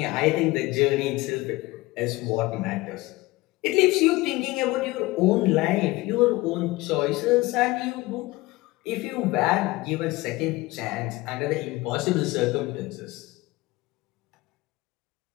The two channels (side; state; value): right; quieter; 20.7 dB